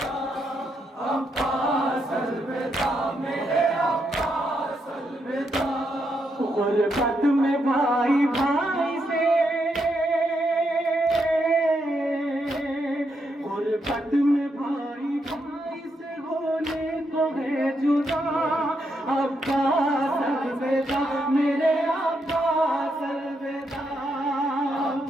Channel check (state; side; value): normal; both; correlation 0.80